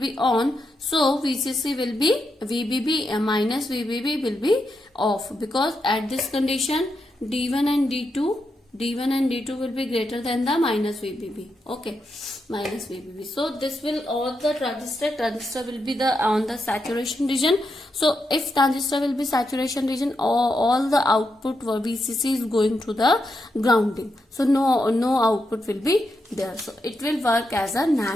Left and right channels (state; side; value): normal; both; correlation 0.84